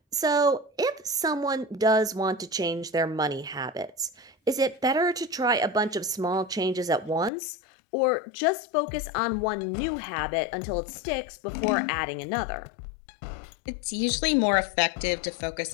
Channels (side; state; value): right; drops out; at 7.3 s